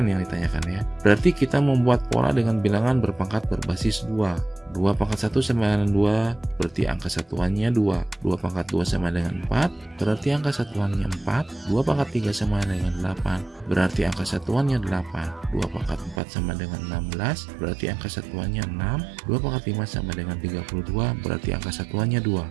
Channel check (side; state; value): left; drops out; at 16.2 s